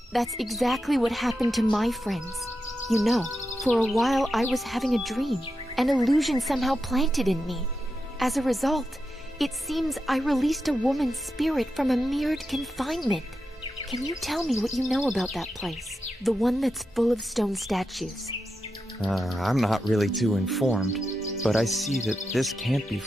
That's exactly what happened to my friends. You know, for a while I was having a dream, an illusion somehow planted in me. As a result, it seems I released a woman's spirit from a mirrored confinement. Can you tell me what you know about that place? The one that's full of stone statues. I'm not really too informed, but I see that this can't be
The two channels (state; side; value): normal; both; correlation 0.88